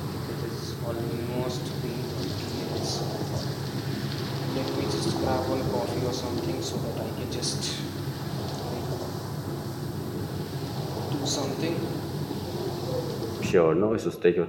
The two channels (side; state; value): both; identical; correlation 1.00